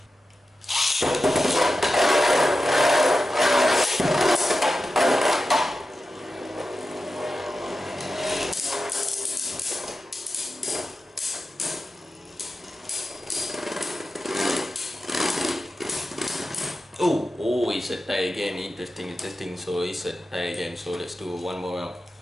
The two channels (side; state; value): both; normal; correlation 0.92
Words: Oh, it's a tie again. Interesting. So it's a tie again. So let's do one more round.